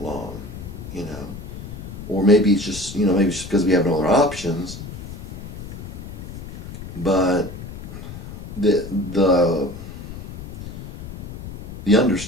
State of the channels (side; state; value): left; noise; rumble, 10 dB below the sound